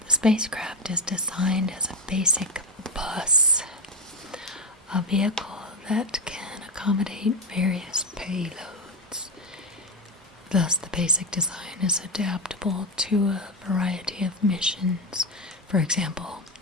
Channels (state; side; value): normal; both; correlation 0.14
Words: the spacecraft is designed as a basic bus, a vehicle that can accommodate various payloads. Thus, the basic design is adaptable to a variety of missions. For example,